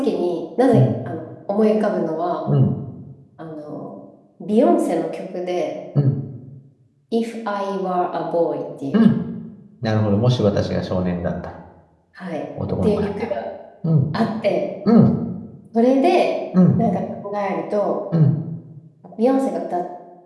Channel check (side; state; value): both; identical; correlation 1.00